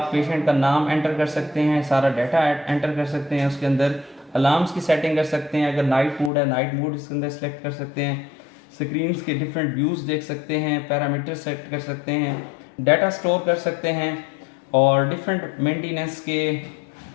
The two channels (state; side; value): drops out; right; at 6.3 s